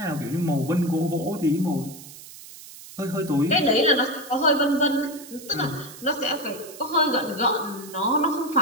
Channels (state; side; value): noise; right; hiss, 16 dB below the sound